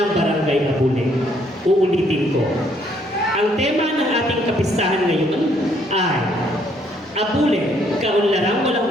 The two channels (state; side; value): normal; both; correlation 0.68